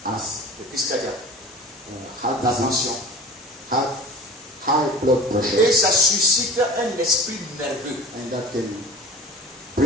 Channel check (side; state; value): both; normal; correlation 0.38